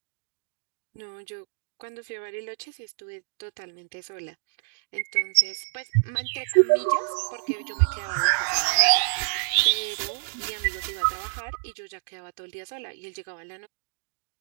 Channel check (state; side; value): silent; left; digital silence